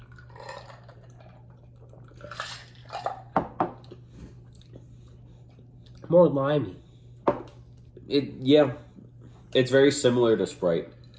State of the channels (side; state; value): both; identical; correlation 1.00